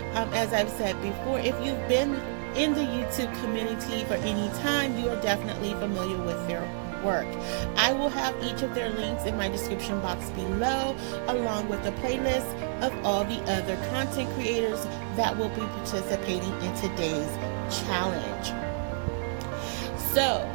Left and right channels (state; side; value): silent; left; 58 dB below the other